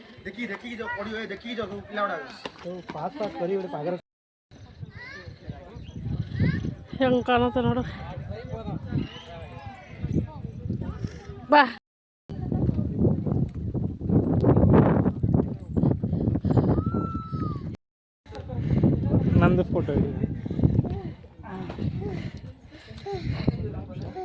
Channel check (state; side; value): identical; both; correlation 1.00